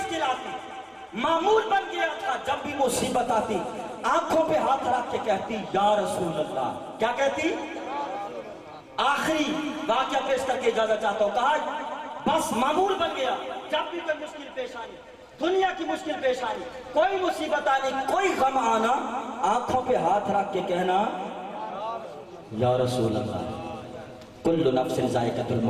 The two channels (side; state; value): both; identical; correlation 1.00